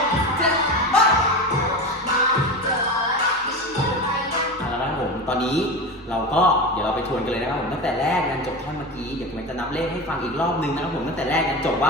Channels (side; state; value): both; normal; correlation 0.25